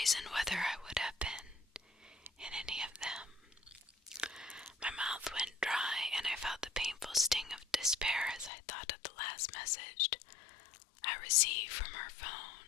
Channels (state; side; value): drops out; right; at 8.5 s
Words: whether I would have been in any of them. My mouth went dry, and I felt the painful sting of despair as I thought of the last message I received from her